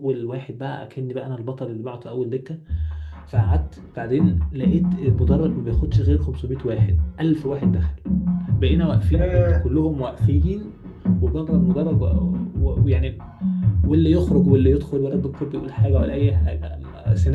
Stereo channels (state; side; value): identical; both; correlation 1.00